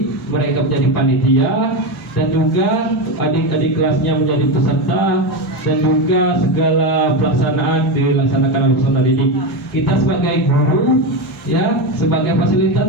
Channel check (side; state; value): both; normal; correlation 0.15